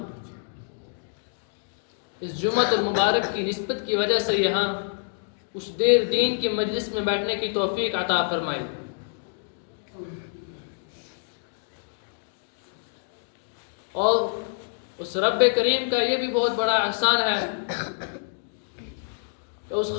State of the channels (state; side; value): silent; right; digital silence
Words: اس جمعۃ المبارک کی نسبت کی وجہ سے یہاں کچھ دیر دین کی مجلس میں بیٹھنے کی توفیق عطا فرمائی اور اس رب کریم کا یہ بھی بہت بڑا احسان ہے کہ اس